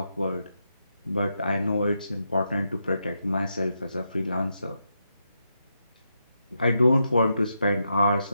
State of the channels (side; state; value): both; inverted; correlation -0.84